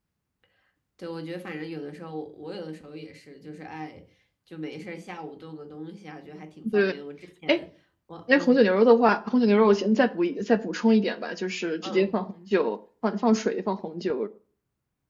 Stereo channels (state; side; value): identical; both; correlation 1.00